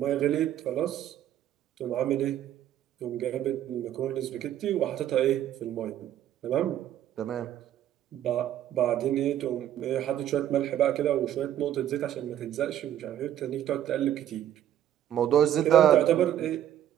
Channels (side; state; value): left; quieter; 11.4 dB